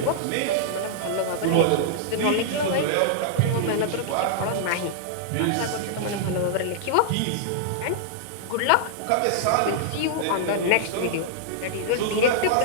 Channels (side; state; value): both; different; correlation -0.02